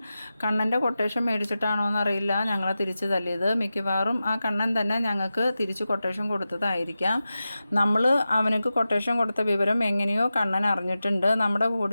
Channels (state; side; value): inverted; both; correlation -0.93